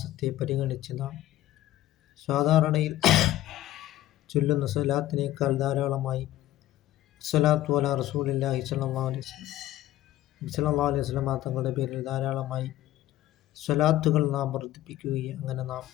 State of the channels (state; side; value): quieter; right; 14.3 dB